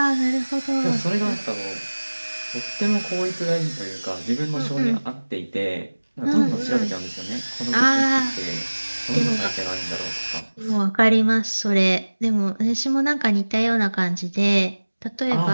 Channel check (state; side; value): inverted; both; correlation -1.00